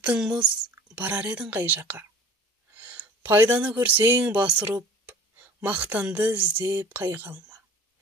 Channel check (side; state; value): both; normal; correlation 0.44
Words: мұз, барар едің қай жаққа. Пайданы көрсең басырып, мақтанды іздеп қайғы алма.